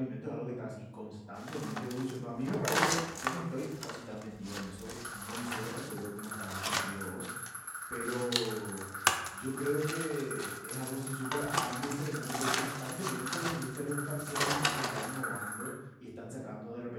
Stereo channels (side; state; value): both; identical; correlation 1.00